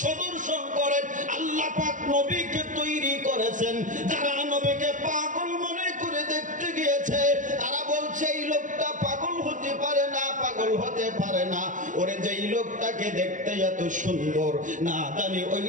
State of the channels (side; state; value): left; late; 0.37 ms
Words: সদর্শন করেন আল্লাহ পাক নবীকে তৈরি করেছেন। যারা নবীকে পাগল মনে করে দেখতে গিয়েছে, তারা বলছে এই লোকটা পাগল হতে পারে না, পাগল হতে পারে না। ওরে যেই লোকটাকে দেখতে এত সুন্দর, না জানি ওই